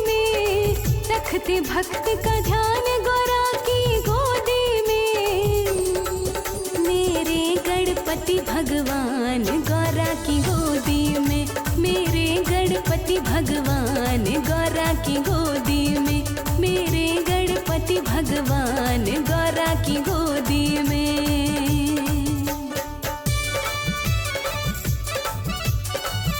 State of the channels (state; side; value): identical; both; correlation 1.00